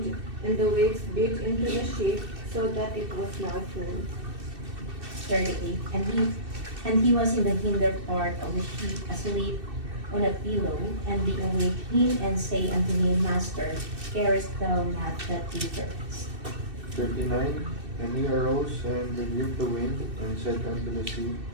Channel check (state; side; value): late; left; 2.6 ms